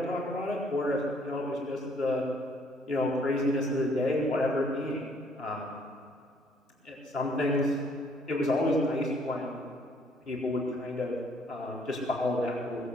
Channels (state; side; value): normal; both; correlation 0.64